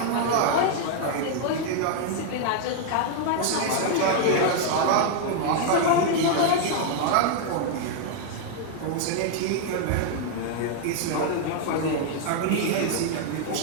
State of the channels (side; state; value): both; different; correlation 0.00